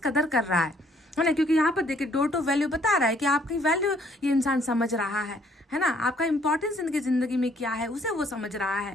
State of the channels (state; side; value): normal; both; correlation 0.64